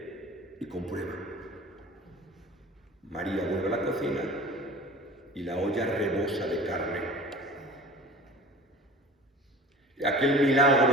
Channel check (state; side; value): normal; both; correlation 0.40